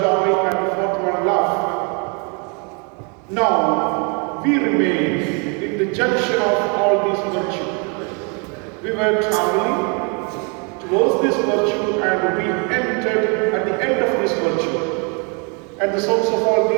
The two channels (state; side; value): quieter; left; 34.9 dB